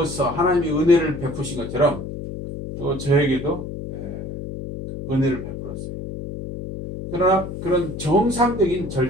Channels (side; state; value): left; noise; hum, 8 dB below the sound